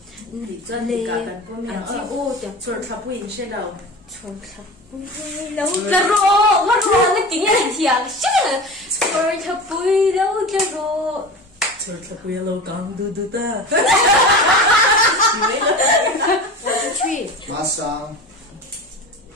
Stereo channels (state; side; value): normal; both; correlation 0.32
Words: Đi doan đi cả kan ko mi ang Ô, chẳng sor trapui in shi lâu. trông thật. Lâu cái rô, nó tiếng là thiang. Rồi thật bùi lâu cái rô. Sor trapui lâu gang du du ta. 3. Masang.